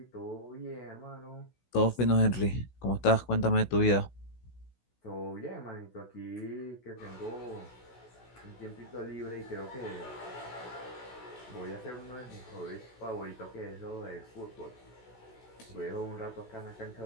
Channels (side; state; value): right; late; 16 ms